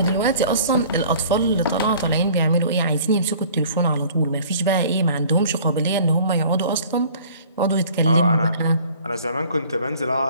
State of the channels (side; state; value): both; inverted; correlation -0.50